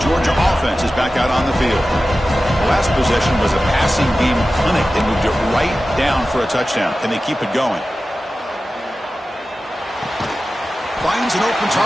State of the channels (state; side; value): normal; both; correlation 0.94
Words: Georgia offense is back out on the field. The last possession was a passing game clinic. They moved it right down for a touchdown. Can they keep it going? Finds an open